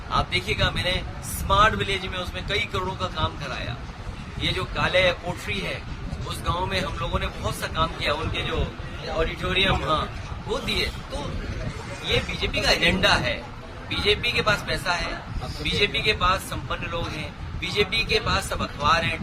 आप देखिएगा, मैंने स्मार्ट विलेज में उसमें कई करोड़ों का काम कराया। ये जो काले कोठरी है, उस गांव में हम लोगों ने बहुत सा काम किया, उनके जो ऑडिटोरियम वो दिए। तो ये बीजेपी का एजेंडा है, बीजेपी के पास पैसा है, बीजेपी के पास संपन्न लोग हैं, बीजेपी के पास सब अखबार हैं,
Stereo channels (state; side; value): identical; both; correlation 1.00